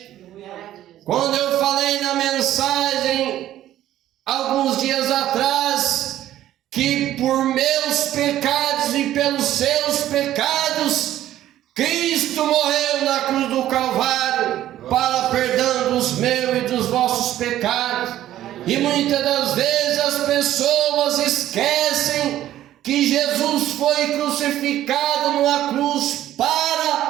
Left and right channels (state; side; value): quieter; left; 13.0 dB